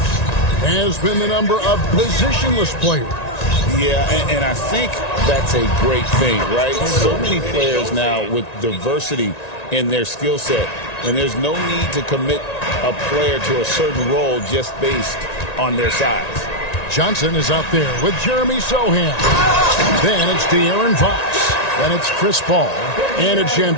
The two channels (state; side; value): late; right; 1.9 ms